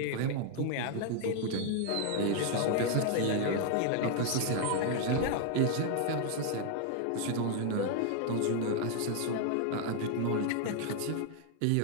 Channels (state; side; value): different; both; correlation 0.00